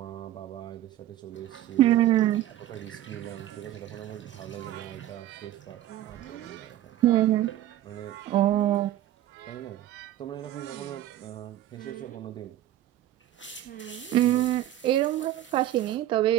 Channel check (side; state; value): left; quieter; 13.2 dB